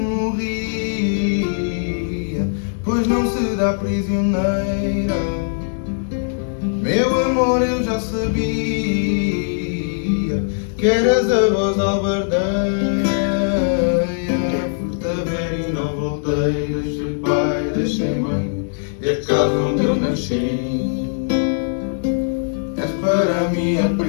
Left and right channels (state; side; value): silent; right; digital silence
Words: pois não se dá prisioneira. Meu amor, eu já sabia que eras a voz albardeira. Fui-te a ver e não voltei, deixei pai, deixei mãe, e a casa onde eu nasci. És para mim a